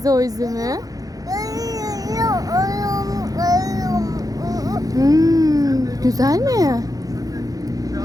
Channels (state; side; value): late; left; 0.17 ms